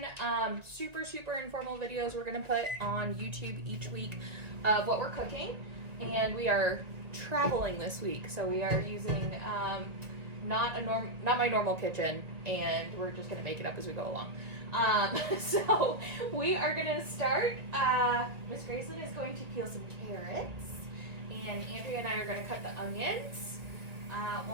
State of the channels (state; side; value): late; left; 1.9 ms